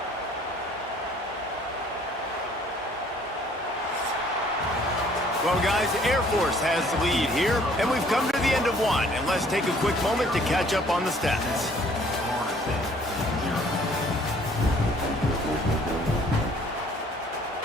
Well, guys, Air Force has the lead here, and we've come to the end of one. And let's take a quick moment to catch up on the stats.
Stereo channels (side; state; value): both; normal; correlation 0.58